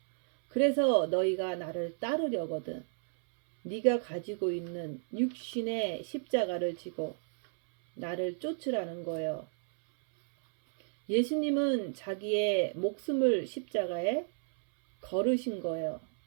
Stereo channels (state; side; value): silent; left; 56 dB below the other